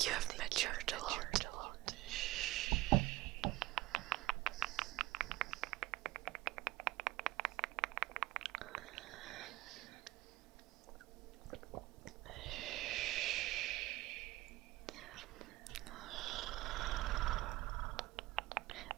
you have matured a lot.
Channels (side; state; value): left; quieter; 17.9 dB